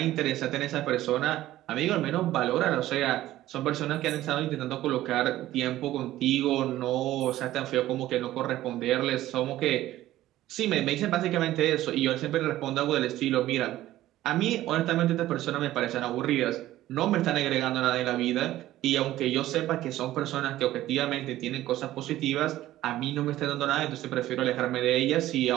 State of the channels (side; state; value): left; quieter; 14.7 dB